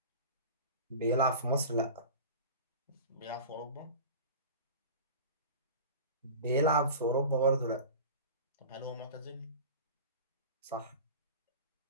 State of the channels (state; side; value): inverted; both; correlation -0.35